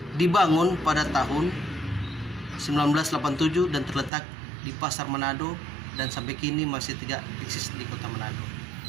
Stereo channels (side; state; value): left; drops out; at 4.1 s